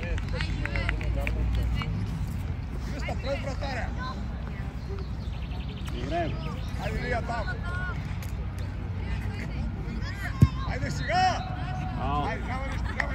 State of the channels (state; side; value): identical; both; correlation 1.00